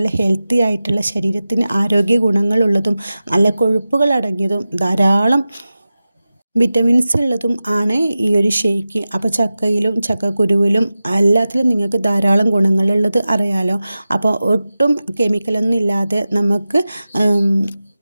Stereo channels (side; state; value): both; inverted; correlation -0.95